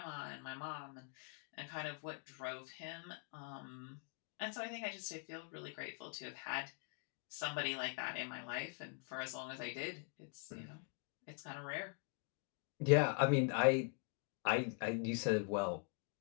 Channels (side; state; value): right; quieter; 37.6 dB